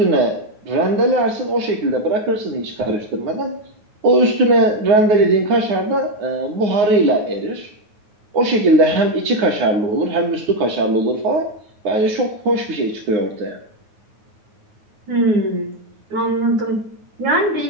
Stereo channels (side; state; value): left; late; 9.5 ms